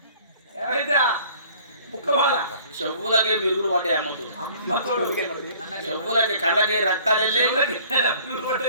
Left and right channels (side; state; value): both; inverted; correlation -0.53